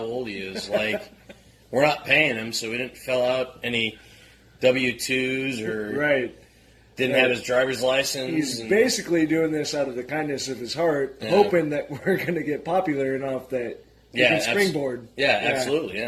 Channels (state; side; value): identical; both; correlation 1.00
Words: old he is. Like, we're not paying him, so we didn't fill out any W-2s or Right. didn't have his driver's license. He's basically doing this out of the kindness of his heart, hoping that we're going to get popular enough that he can springboard. Absolutely,